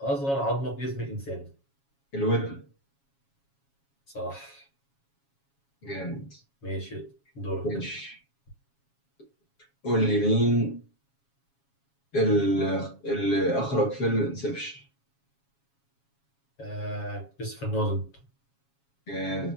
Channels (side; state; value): right; late; 7.3 ms